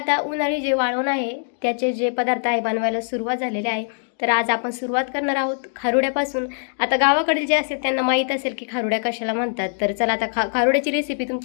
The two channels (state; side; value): silent; right; digital silence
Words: उन्हाळी जे वाळवण आहे त्याचे जे पदार्थ आहे बनवायला सुरुवात झालेली आहे। तर आज आपण सुरुवात करणार आहोत खारुड्यापासून। आता गावाकडे जे असेल त्यांना माहीत असेल की खारुड्या कशाला म्हणतात। तर चला आता खारुड्याची रेसिपी